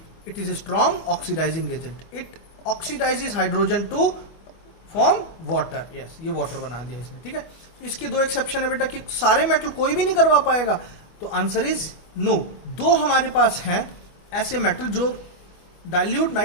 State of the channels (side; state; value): right; late; 25 ms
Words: it is a strong oxidising agent, it oxidises hydrogen to form water. Yes, ये वाटर बना दिया इसने, ठीक है। इसके दो एक्सेप्शन है बेटा कि सारे मेटल कोई भी नहीं करवा पाएगा, तो आंसर इज नो। दो हमारे पास हैं ऐसे मेटल जो डाइल्यूट